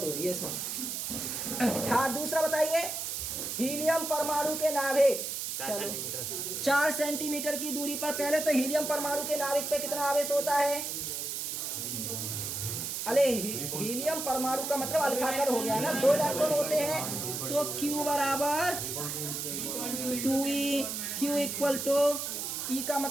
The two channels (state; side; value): noise; right; hiss, 3 dB below the sound